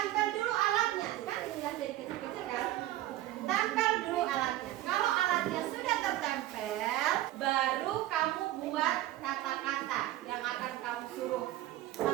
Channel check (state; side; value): quieter; left; 14.8 dB